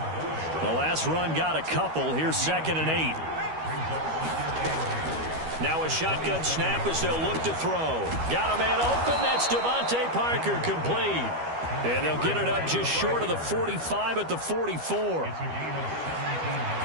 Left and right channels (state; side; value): late; left; 13 ms